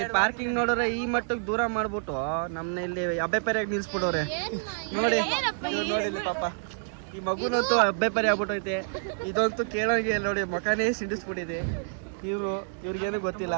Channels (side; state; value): left; silent; digital silence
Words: ಪಾರ್ಕಿಂಗ್ ನೋಡಿದ್ರೆ ಈ ಮಟ್ಟಕ್ಕೆ ದೂರ ಮಾಡ್ಬಿಟ್ಟು ನಮ್ನ ಇಲ್ಲಿ ಅಬ್ಬೆಪೆರೆಯಾಗಿ ನಿಲ್ಸ್ಬಿಟ್ಟವ್ರೆ ನೋಡಿ. ನೋಡಿ ಇಲ್ಲಿ ಪಾಪ ಈ ಮಗುನಂತೂ ಅಬ್ಬೆಪೆರೆ ಆಗ್ಬಿಟ್ಟೈತೆ. ಇದಂತೂ ಕೇಳೋಂಗೆ ನೋಡಿ, ಮಕನೇ ಸಿಡಿಸ್ಬಿಟ್ಟಿದೆ. ಇವ್ರಿಗೇನು ಗೊತ್ತಿಲ್ಲ.